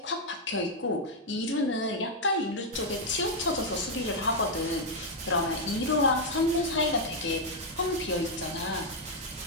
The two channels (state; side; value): normal; both; correlation 0.00